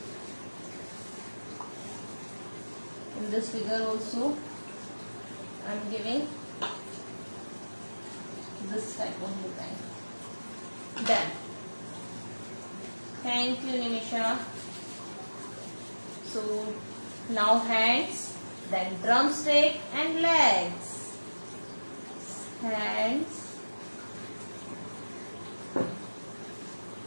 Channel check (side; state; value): both; inverted; correlation -1.00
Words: In this figure also, I am giving this type of design. Done. Thank you, Nimisha. So now hands, then drumstick and legs. Hands.